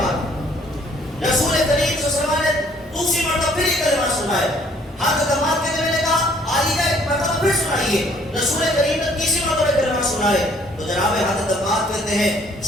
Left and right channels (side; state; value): both; normal; correlation 0.60